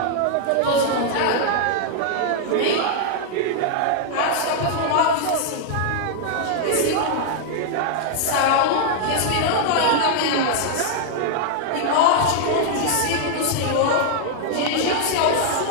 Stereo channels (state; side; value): different; both; correlation 0.00